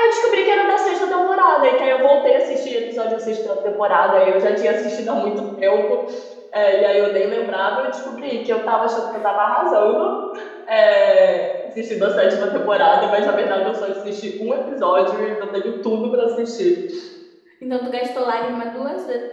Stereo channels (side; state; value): both; identical; correlation 1.00